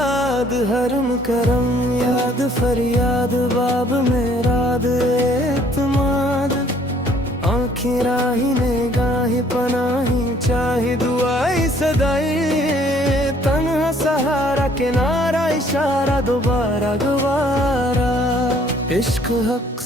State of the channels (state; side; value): normal; both; correlation 0.60